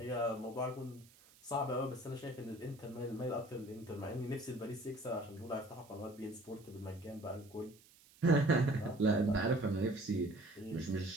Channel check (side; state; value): right; noise; hiss, 26 dB below the sound